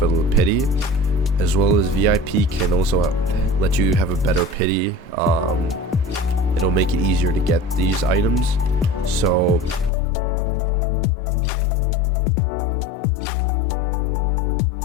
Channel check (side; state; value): right; drops out; at 9.9 s